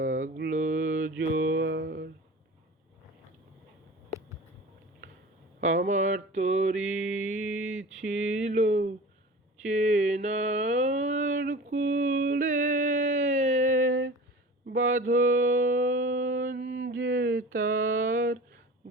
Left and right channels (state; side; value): normal; both; correlation 0.37